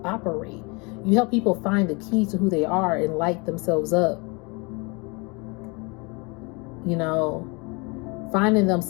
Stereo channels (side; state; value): right; quieter; 29.4 dB